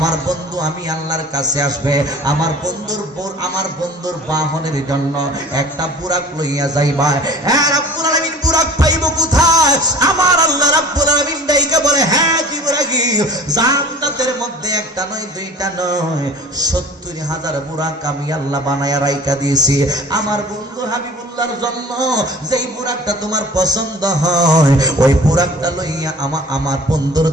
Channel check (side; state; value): both; normal; correlation 0.44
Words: বন্ধু আমি আল্লাহর কাছে আসবে, আমার বন্ধুর বাহনের জন্য একটা বুরাক লইয়া যাইবা। হ্যাঁ রব্বুল আলামিন বুরাক পাইব কোথায়? আমার আল্লাহ রব্বুল আলামিন ডাইকা বলে, হ্যাঁ জিবরাইল জান্নাতের মধ্যে একটা নয় দুইটা নয় 70,000 বুরাক আমি আল্লাহ বানায়া রাইখা দিয়েছি আমার বন্ধু হাবিবুল্লাহর জন্য। যেই বুরাকটা তোমার পছন্দ হয় ওই বুরাকটা লইয়া আমার বন্ধুর